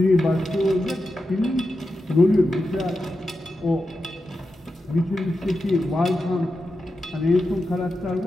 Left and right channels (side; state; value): both; normal; correlation 0.89